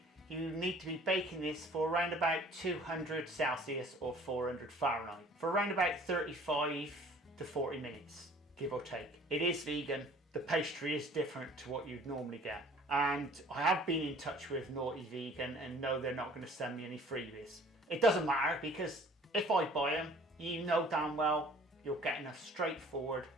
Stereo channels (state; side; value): normal; both; correlation 0.52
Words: you need to be baking this for around about 200 Celsius or 400 Fahrenheit for around about 35 to 40 minutes, give or take. It is vegan. The pastry is different to what you'd normally get. And I have been in touch with Naughty Vegan and no, they're not going to send me any freebies. It doesn't matter because if I buy them, you know damn well you're getting a straightforward